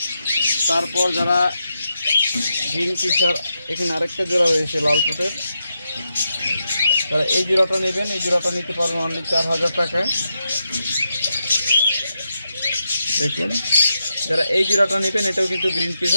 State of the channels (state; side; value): inverted; both; correlation -0.85